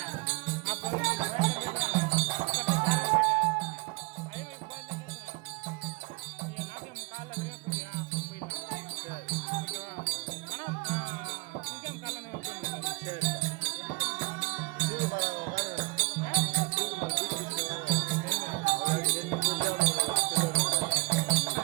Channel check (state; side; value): quieter; left; 26.8 dB